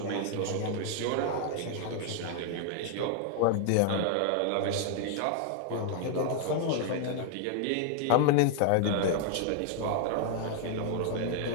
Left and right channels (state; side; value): different; both; correlation 0.00